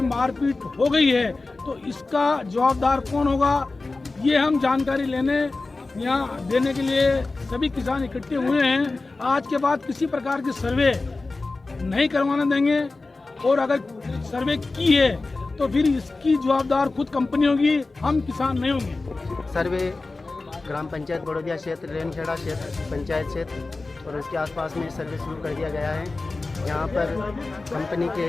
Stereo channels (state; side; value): quieter; right; 3.5 dB